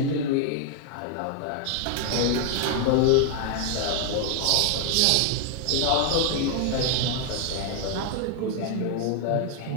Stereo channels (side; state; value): both; different; correlation 0.00